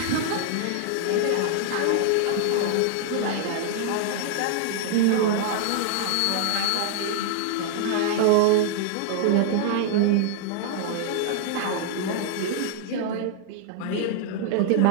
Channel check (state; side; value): different; both; correlation 0.00